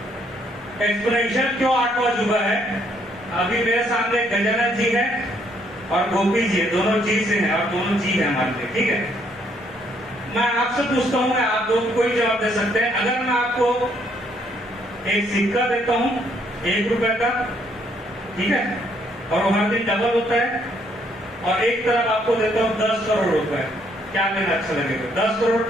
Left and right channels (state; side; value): normal; both; correlation 0.69